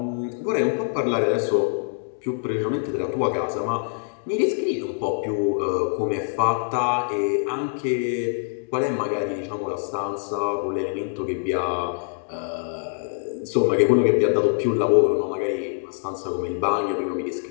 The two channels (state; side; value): silent; right; digital silence